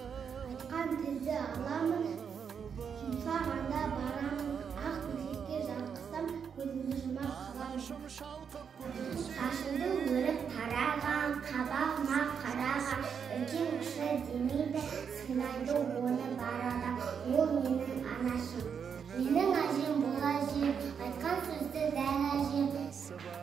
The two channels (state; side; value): quieter; left; 6.9 dB